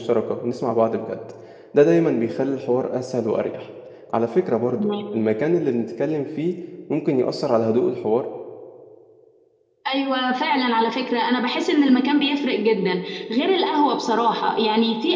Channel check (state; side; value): identical; both; correlation 1.00